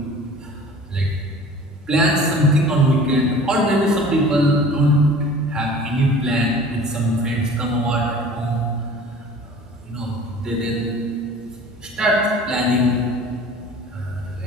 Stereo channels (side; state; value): both; normal; correlation 0.45